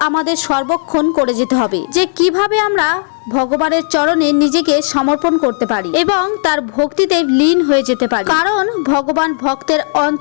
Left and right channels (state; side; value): silent; right; digital silence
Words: আমাদের সর্বক্ষণ করে যেতে হবে যে কিভাবে আমরা ভগবানের চরণে নিজেকে সমর্পণ করতে পারি এবং তার ভক্তিতে লীন হয়ে যেতে পারি, কারণ ভগবান ভক্তের